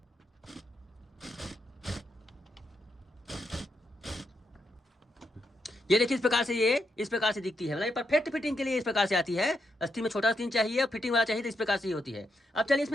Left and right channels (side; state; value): both; normal; correlation 0.82